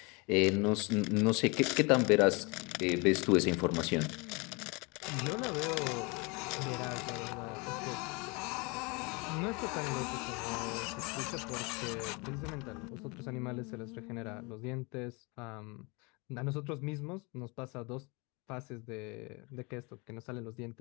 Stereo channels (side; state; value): right; quieter; 28.8 dB